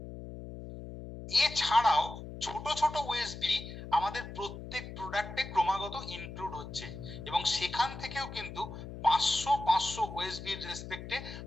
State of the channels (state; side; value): noise; left; hum, 10 dB below the sound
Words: এছাড়াও ছোট ছোট ওএসবি আমাদের প্রত্যেক প্রোডাক্টে ক্রমাগত ইনক্লুড হচ্ছে, এবং সেখান থেকেও কিন্তু 500 ওএসবির রেসপেক্টে